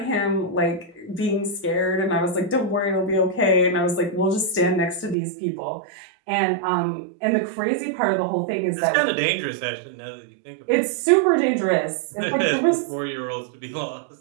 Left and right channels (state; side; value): drops out; left; at 5.2 s